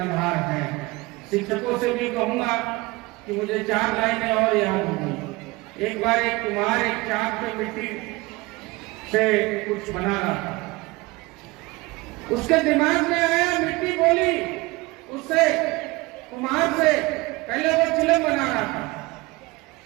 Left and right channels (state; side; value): quieter; left; 22.6 dB